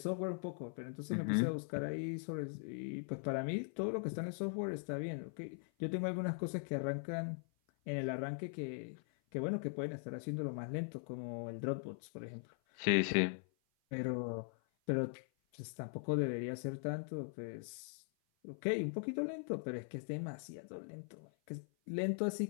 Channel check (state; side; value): silent; right; 51 dB below the other